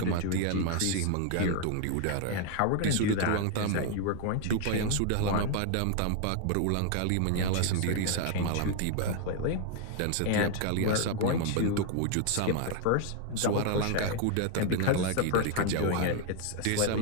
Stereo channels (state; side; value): different; both; correlation 0.00